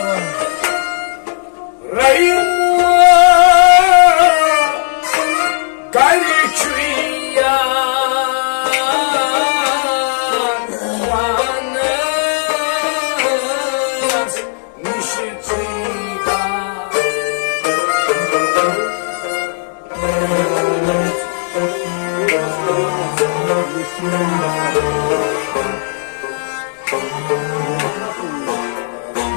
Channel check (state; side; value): silent; right; 62 dB below the other